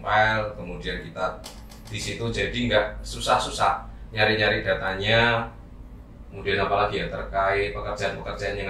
kemudian kita di situ jadi nggak susah-susah nyari-nyari datanya. Kemudian apalagi ya terkait pekerjaan-pekerjaan yang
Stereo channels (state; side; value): identical; both; correlation 1.00